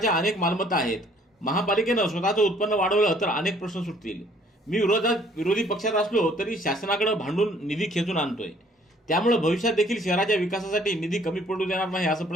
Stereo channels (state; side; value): normal; both; correlation 0.60